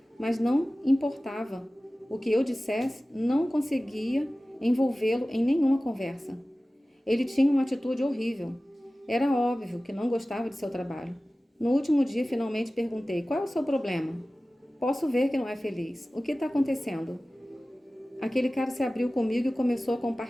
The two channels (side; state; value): both; normal; correlation 0.97